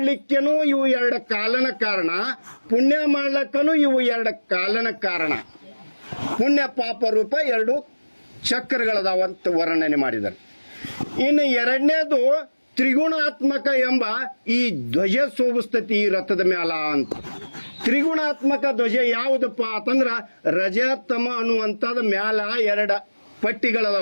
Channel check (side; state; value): both; inverted; correlation -1.00